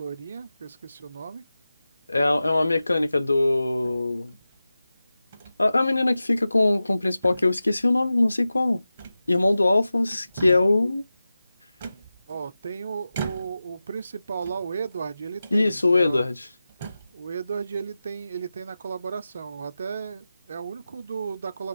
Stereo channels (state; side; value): inverted; both; correlation -0.94